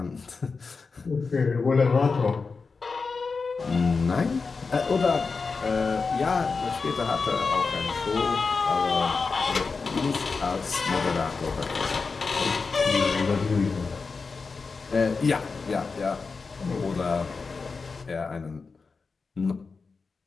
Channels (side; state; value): right; quieter; 4.6 dB